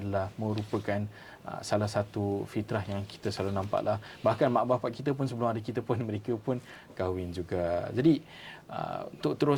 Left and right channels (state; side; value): identical; both; correlation 1.00